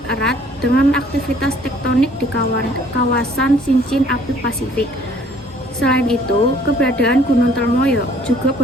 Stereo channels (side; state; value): both; normal; correlation 0.58